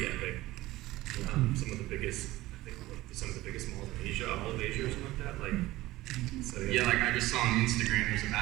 epic. Some of the biggest, I think, some of the biggest malls in Asia, all of Asia or something like that. Like, so yeah, like I just saw on Instagram, there's a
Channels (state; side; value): quieter; left; 17.6 dB